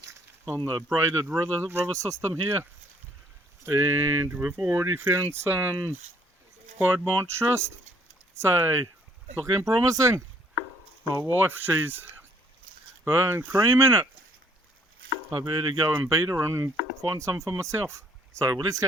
on the braided river system here. and we've already found some Piemontite Schist, so it's looking promising. My wife, she's burning cream in it. I better go and beat her and find some for myself. So let's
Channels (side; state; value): both; normal; correlation 0.62